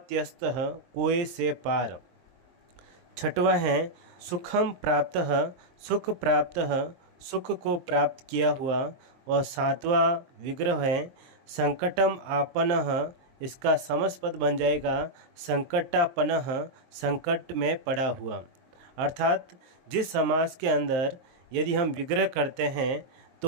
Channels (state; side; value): late; left; 23 ms